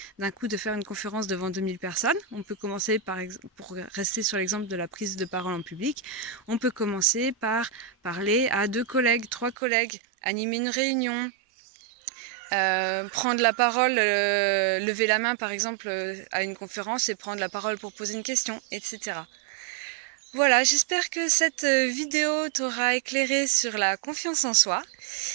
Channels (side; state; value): left; drops out; at 9.6 s